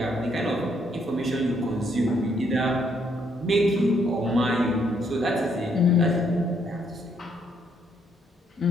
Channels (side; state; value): both; normal; correlation 0.71